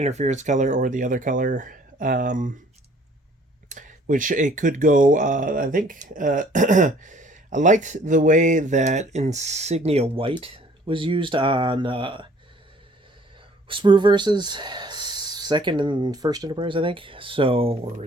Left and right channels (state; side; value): normal; both; correlation 0.57